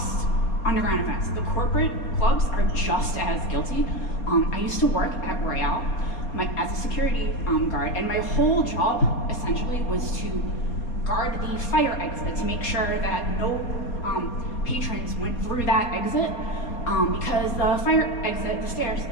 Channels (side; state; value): right; late; 4.2 ms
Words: underground events. The corporate clubs are just as guilty. I used to work at Royale as a security guard, and my whole job essentially was to guard the fire exit to make sure that no patrons went through that exit, because the fire exit, the stairs,